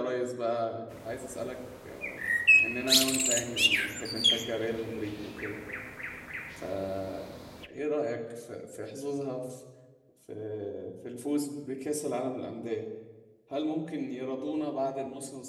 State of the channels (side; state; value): both; identical; correlation 1.00